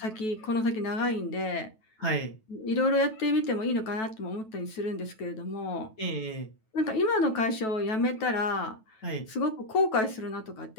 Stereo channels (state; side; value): late; right; 9.2 ms